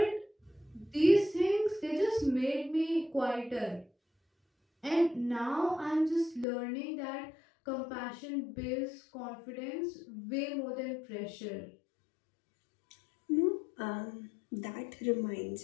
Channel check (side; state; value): right; drops out; at 6.5 s